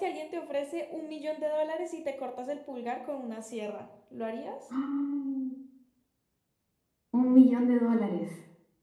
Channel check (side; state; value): both; identical; correlation 1.00